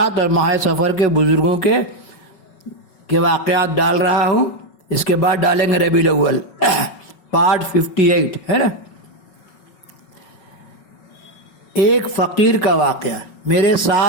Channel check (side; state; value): right; late; 5.3 ms